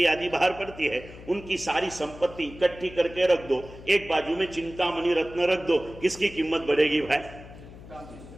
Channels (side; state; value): left; noise; hum, 17 dB below the sound